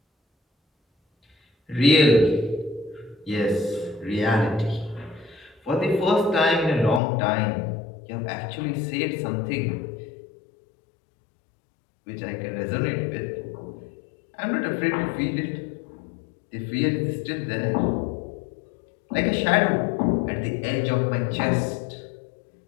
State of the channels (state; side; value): drops out; right; at 7.0 s